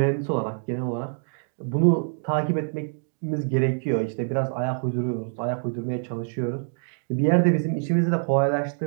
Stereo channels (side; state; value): left; silent; digital silence